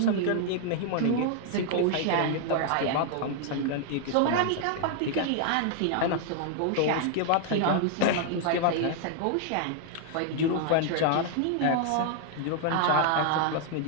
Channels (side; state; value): both; different; correlation 0.00